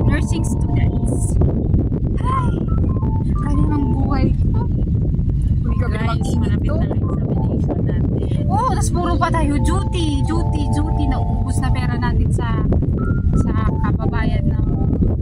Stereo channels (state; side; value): identical; both; correlation 1.00